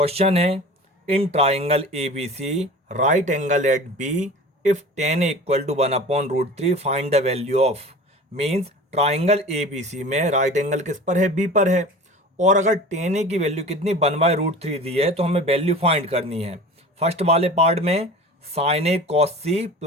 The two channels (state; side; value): normal; both; correlation 0.38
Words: है, in triangle A B C right angle at B if tan equal to 1/√3 find the value of. Means triangle A B C में right angle किस पर है? B पर है। और अगर टेन ए की वैल्यू कितनी 1/√3 दी है तो हमें वैल्यू फाइंड करनी है। फर्स्ट वाले पार्ट में साइन ए कॉस सी